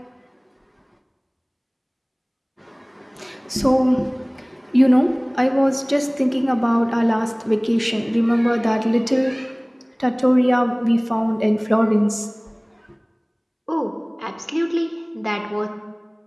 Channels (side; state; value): both; identical; correlation 1.00